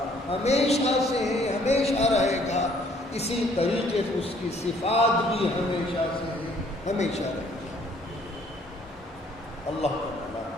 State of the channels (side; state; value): both; normal; correlation 0.61